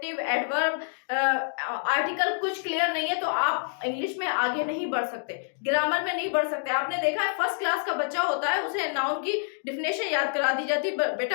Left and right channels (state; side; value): silent; right; digital silence